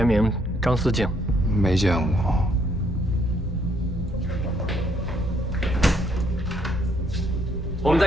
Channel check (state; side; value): normal; both; correlation 0.70